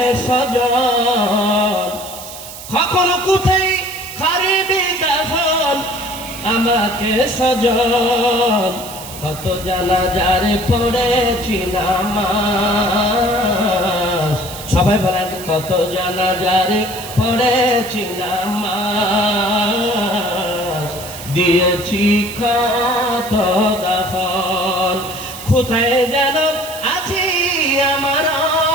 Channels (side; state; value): right; noise; hiss, 13 dB below the sound